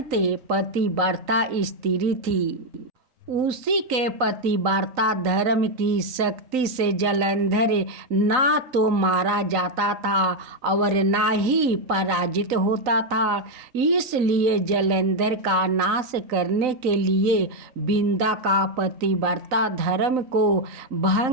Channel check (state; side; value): late; left; 3.9 ms